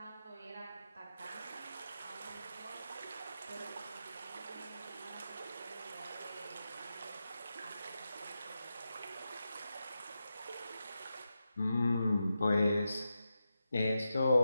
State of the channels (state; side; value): inverted; both; correlation -0.89